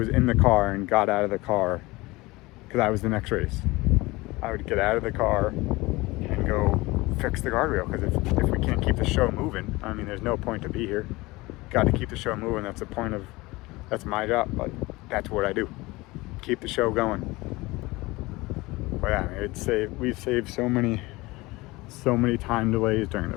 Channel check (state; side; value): quieter; right; 21.6 dB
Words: in the car and got out of the car because I was the next race. I would get out of the car and go fix the guardrail, because if we can't keep the show moving, I mean, there's no point to be here. Got to keep the show moving. That's the point of, that's my job. Like, that's what I do. Keep the show going. But yeah, we've saved so many time delays during the